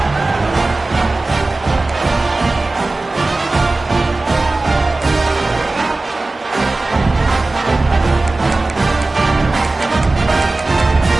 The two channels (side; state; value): left; quieter; 3.2 dB